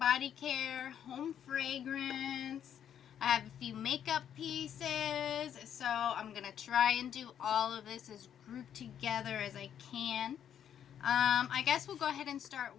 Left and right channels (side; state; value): right; quieter; 9.3 dB